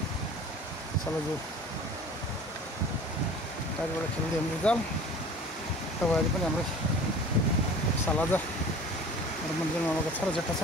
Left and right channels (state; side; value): normal; both; correlation 0.43